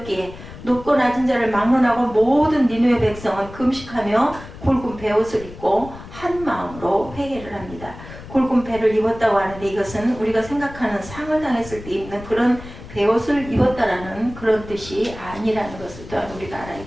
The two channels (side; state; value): left; noise; rumble, 15 dB below the sound